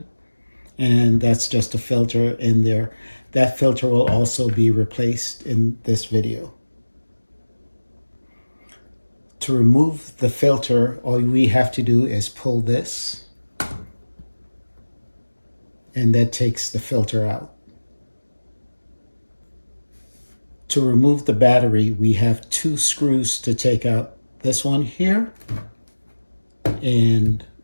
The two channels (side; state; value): both; inverted; correlation -1.00